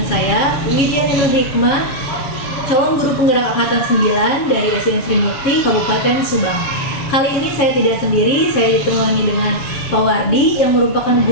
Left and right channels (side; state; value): right; late; 7.2 ms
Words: Lydia Nur Hikmah, calon guru penggerak angkatan 9 dari SDN Sri Mukti, Kabupaten Subang. Kali ini saya tidak sendiri, saya ditemani dengan Pak Wardi yang merupakan